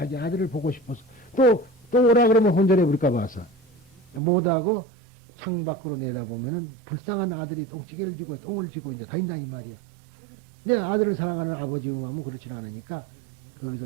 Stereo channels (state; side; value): drops out; left; at 4.2 s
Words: 아들을 보고 싶어서 또 오라 그러면 혼절해 버릴까 봐서 못하고 창밖으로 내다보면은 불쌍한 아들이 똥찌개를 지고 똥을 지고 이제 다닌다 이 말이야. 내 아들을 사랑하는 아버지 마음은 그렇지 않으니까